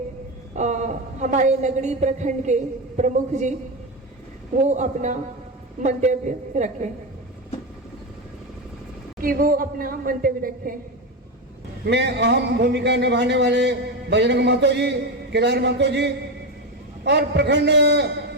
हमारे नगरी प्रखंड के प्रमुख जी, वो अपना मंतव्य रखें, कि वो अपना मंतव्य रखें। में अहम भूमिका निभाने वाले बजरंग महतो जी, केदार महतो जी और प्रखंड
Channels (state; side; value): normal; both; correlation 0.14